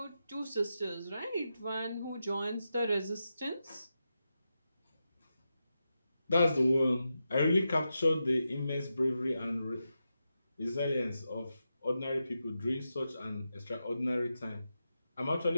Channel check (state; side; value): inverted; both; correlation -0.88